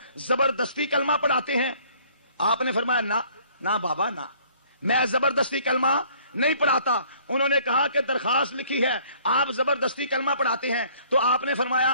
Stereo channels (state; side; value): inverted; both; correlation -0.58